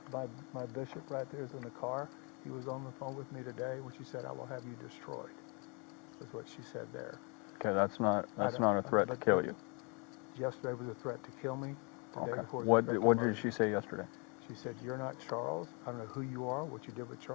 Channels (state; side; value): quieter; right; 33.4 dB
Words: My bishop right there is in the car. He was on the phone with me today when she said, I will have you destroyed. That's what she said there. Okay, that's not a threat to kill you. Yesterday was a threat to kill me. Okay. What did she say yesterday? She said, you're not Charles. I don't know who you are, what you did with